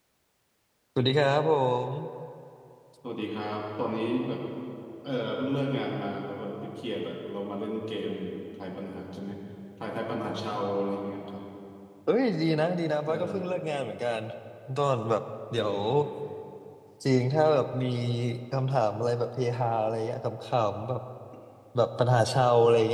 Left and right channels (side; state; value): both; identical; correlation 1.00